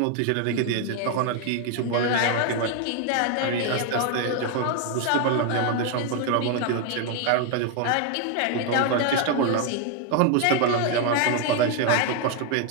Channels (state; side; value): different; both; correlation 0.01